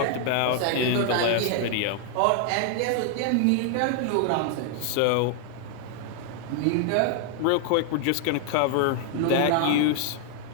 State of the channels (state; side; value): different; both; correlation 0.00